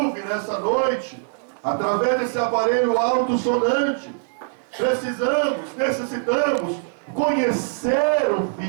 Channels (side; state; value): left; silent; 64 dB below the other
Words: nessa noite, através desse aparelho alto-sonante, necessitamos conhecer o